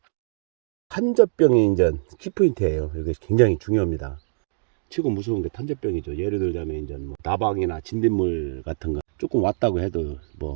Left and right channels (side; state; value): left; silent; digital silence